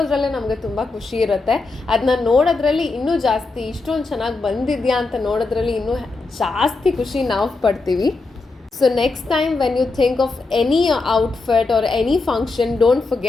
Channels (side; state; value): right; quieter; 3.7 dB